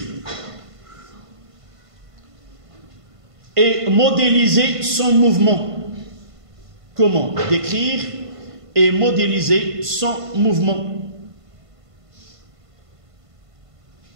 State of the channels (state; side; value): late; left; 1.5 ms